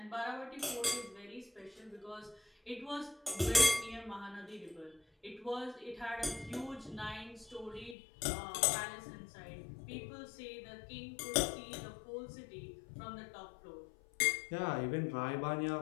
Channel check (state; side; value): drops out; right; at 8.0 s